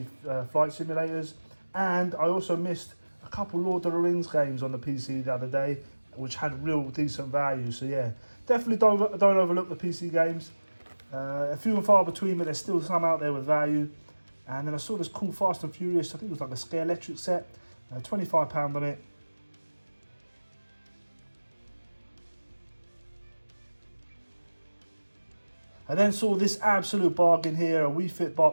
flight simulators. And I also missed a couple Lord of the Rings games on the PC the other day, which had real decent value. So yeah, definitely don't overlook the PC games. A few and far between, but there's still some out there with value. And then I saw this cool Fast and Furious, I think it was like a Scare Electric set, £25 on it. I then saw this absolute bargain here, a Wii Fit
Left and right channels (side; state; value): both; inverted; correlation -1.00